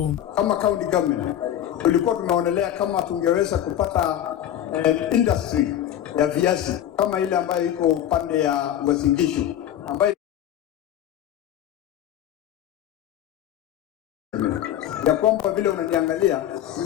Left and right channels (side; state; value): right; quieter; 11.2 dB